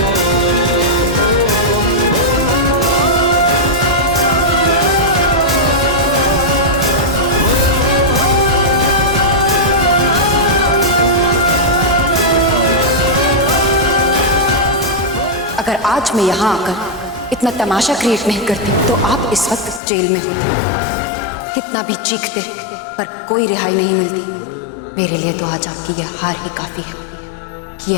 अगर आज मैं यहाँ आकर इतना तमाशा क्रिएट नहीं करती तो आप इस वक्त जेल में होते। कितना भी चीखते पर कोई रिहाई नहीं मिलती। मेरे लिए तो आज आपकी यह हार ही काफी है कि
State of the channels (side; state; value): right; drops out; at 19.8 s